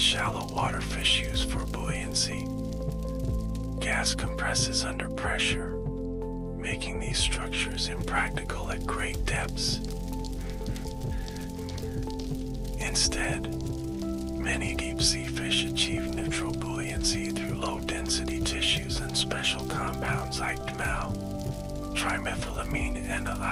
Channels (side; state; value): both; identical; correlation 1.00